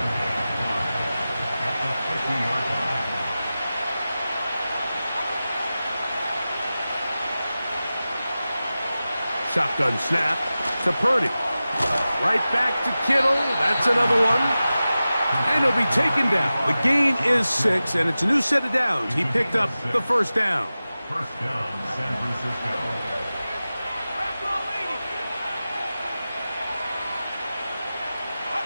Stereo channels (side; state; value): both; inverted; correlation -0.95